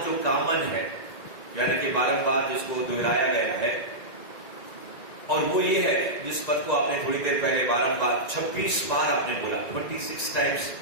जो कॉमन है, यानी कि बारंबार जिसको दोहराया गया है, और वो ये है जिस पद को आपने थोड़ी देर पहले बारंबार 26 बार आपने बोला, 26 टाइम्स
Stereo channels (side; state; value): right; late; 2.1 ms